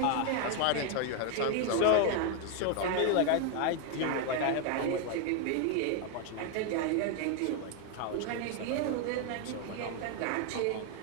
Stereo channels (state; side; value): different; both; correlation 0.01